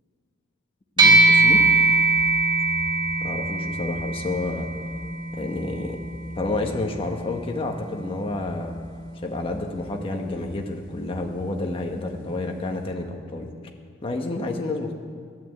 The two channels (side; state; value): both; normal; correlation 0.41